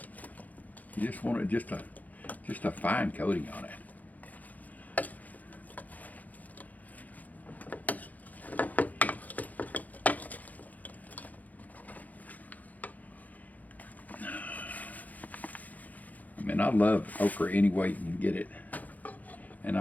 You just want it just a fine coating on it. I love okra any way you can get it, and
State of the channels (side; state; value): right; late; 0.079 ms